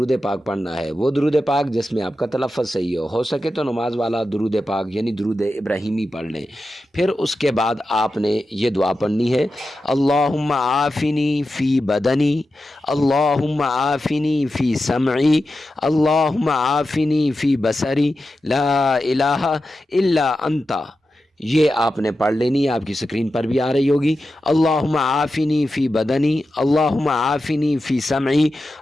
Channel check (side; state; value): both; normal; correlation 0.91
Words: पाक पढ़ना है। वो दुरूद पाक जिसमें आपका तलफ़्फ़ुज़ सही हो सके तो नमाज वाला दुरूद पाक यानी दुरूद इब्राहिमी पढ़ लें। फिर उसके बाद आपने ये दुआ पढ़नी है, अल्लाहुम्मा आफ़िनी फ़ी बदनी, अल्लाहुम्मा आफ़िनी फ़ी समई, अल्लाहुम्मा आफ़िनी फ़ी बसरी, ला इलाहा इल्ला अंता। ये आपने पढ़ लेनी है, आपकी स्क्रीन पर भी आ रही होगी। अल्लाहुम्मा आफ़िनी फ़ी बदनी, अल्लाहुम्मा आफ़िनी फ़ी समई,